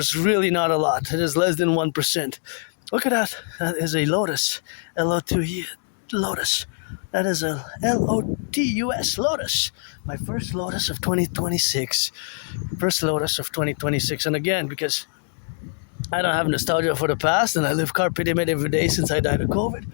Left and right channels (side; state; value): right; silent; 61 dB below the other